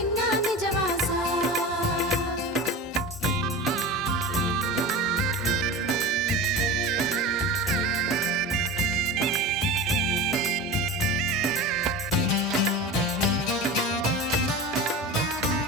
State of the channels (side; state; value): both; normal; correlation 0.30